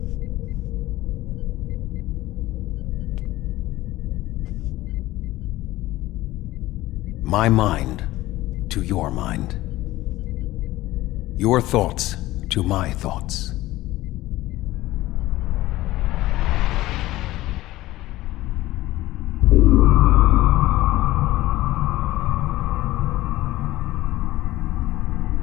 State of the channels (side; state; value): right; quieter; 17.0 dB